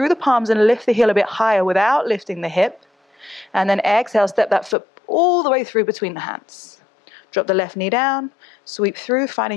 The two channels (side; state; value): right; drops out; at 4.8 s